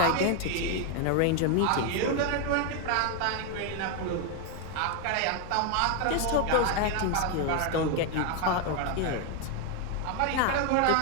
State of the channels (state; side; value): different; both; correlation 0.01